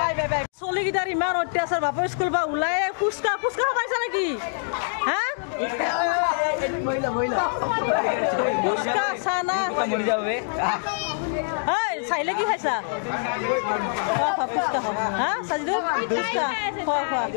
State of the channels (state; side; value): silent; right; digital silence